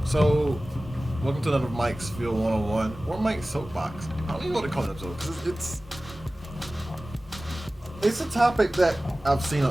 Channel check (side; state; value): both; normal; correlation 0.97